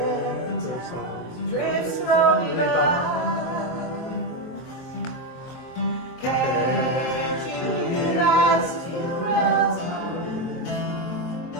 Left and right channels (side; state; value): right; late; 23 ms